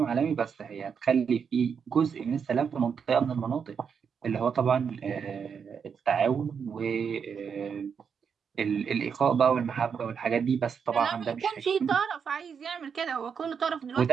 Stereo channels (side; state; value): left; quieter; 6.7 dB